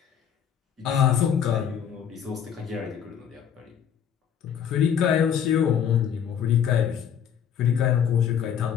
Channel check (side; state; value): right; quieter; 8.5 dB